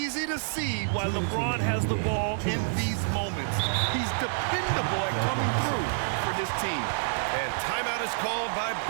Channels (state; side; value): silent; left; digital silence